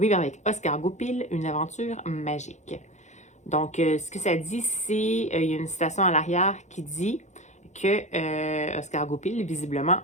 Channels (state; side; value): late; right; 0.34 ms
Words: avec Oscar Goupil une aventure magique. » Donc, ce que ça dit, c'est, il y a une citation à l'arrière qui dit que Oscar Goupil, visiblement,